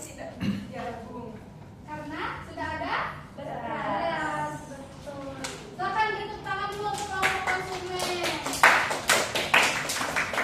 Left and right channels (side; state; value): both; identical; correlation 1.00